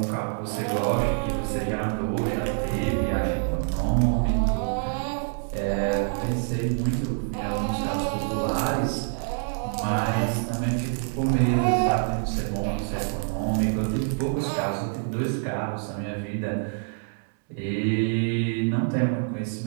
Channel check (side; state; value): left; silent; 61 dB below the other